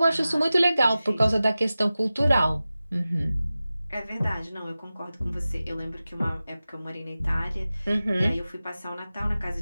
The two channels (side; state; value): both; inverted; correlation -0.96